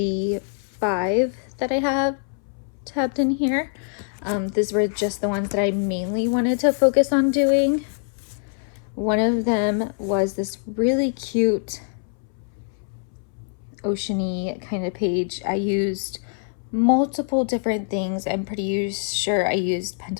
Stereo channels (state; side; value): silent; right; 63 dB below the other